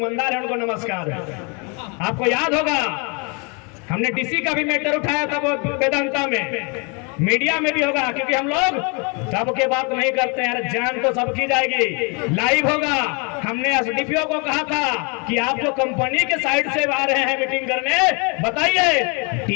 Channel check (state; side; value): quieter; right; 33.2 dB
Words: है उनको नमस्कार है। आपको याद होगा हमने DC का भी मैटर उठाया था वो वेदांता में, मीडिया में भी होगा, क्योंकि हम लोग सबके बात नहीं करते हैं। जान तो सबकी जाएगी, लाइव होगा। हमने SDPO को कहा था कि आप जो कंपनी के साइड से आ रहे हैं मीटिंग करने, बताइए